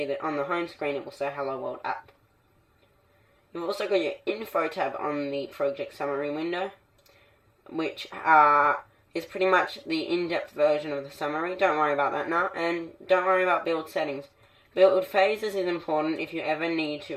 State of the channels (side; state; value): both; identical; correlation 1.00